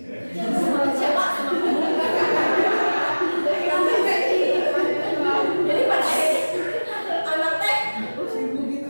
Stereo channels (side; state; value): both; inverted; correlation -1.00